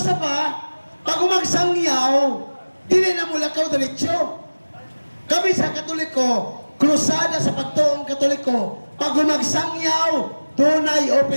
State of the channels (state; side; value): inverted; both; correlation -1.00